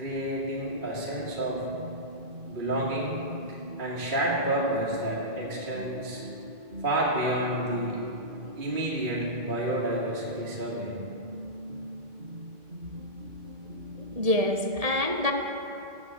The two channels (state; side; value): late; left; 1.7 ms